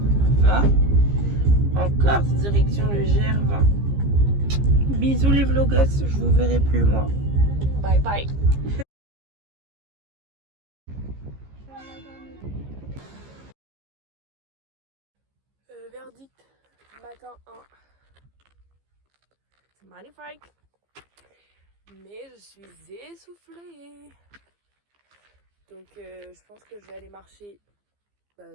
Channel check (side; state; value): left; late; 15 ms